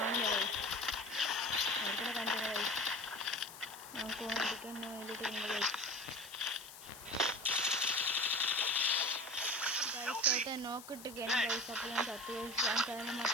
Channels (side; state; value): left; noise; hiss, 15 dB below the sound